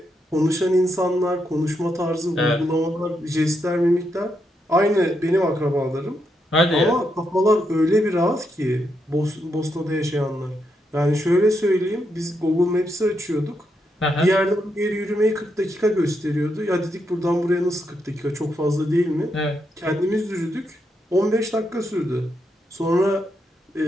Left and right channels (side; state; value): both; normal; correlation 0.81